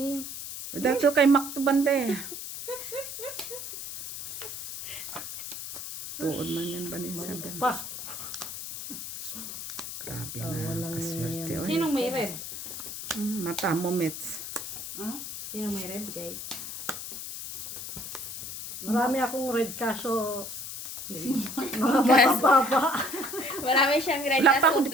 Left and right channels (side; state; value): left; noise; hiss, 8 dB below the sound